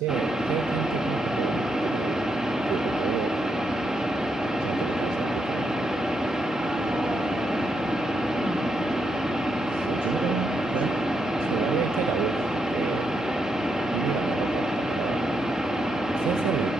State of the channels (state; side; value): normal; both; correlation 0.81